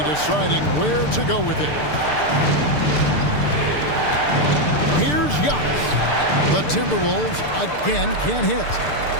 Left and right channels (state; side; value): late; right; 6.7 ms